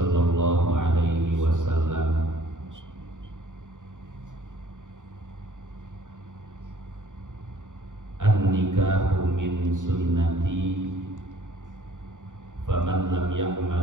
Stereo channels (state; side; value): late; left; 0.87 ms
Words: الله عليه وسلم النكاح من سنتي فمن لم